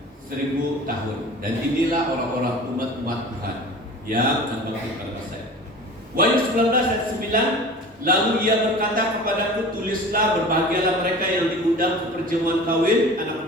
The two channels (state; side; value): normal; both; correlation 0.39